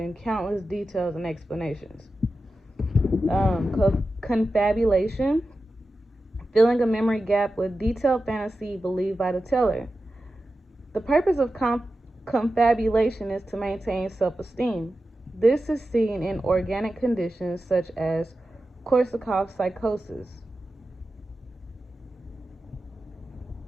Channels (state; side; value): normal; both; correlation 0.92